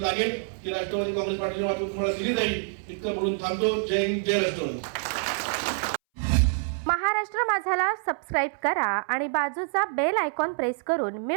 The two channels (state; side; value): silent; left; 60 dB below the other